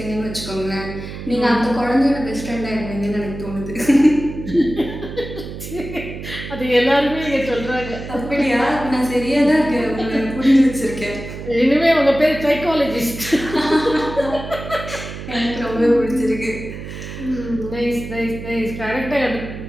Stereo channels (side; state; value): right; noise; hum, 10 dB below the sound